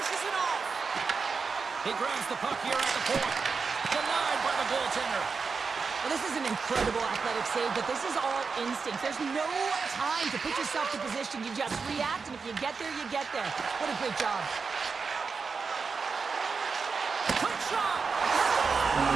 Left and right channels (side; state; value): left; quieter; 5.0 dB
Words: it off. He grabs the puck here at the point. Denied by the goaltender. Well, this is an incredible athletic save, but this is all instinct. There's no time to put yourself to position. You just react, and if you get there, you get there. What a great job. Quick shot!